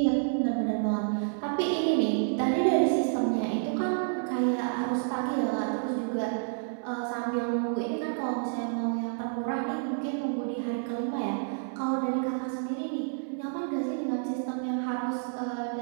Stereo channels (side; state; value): left; silent; 58 dB below the other